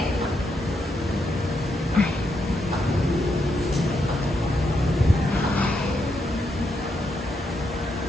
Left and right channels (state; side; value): normal; both; correlation 0.80